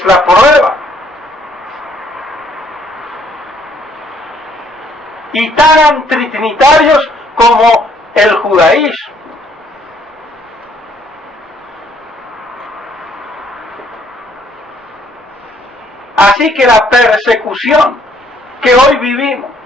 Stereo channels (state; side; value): normal; both; correlation 0.65